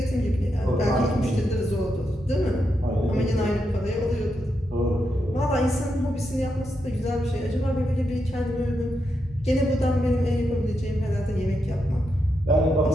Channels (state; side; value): normal; both; correlation 0.84